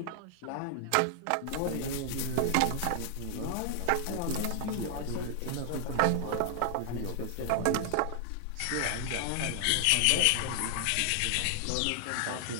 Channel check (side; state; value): both; different; correlation 0.00